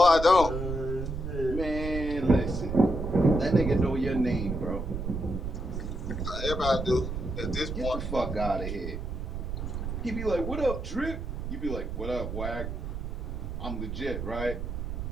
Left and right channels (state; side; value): noise; right; rumble, 5 dB below the sound